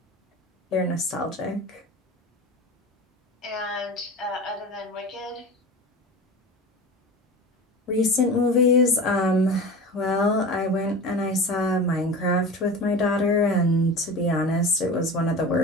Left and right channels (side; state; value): both; normal; correlation 0.32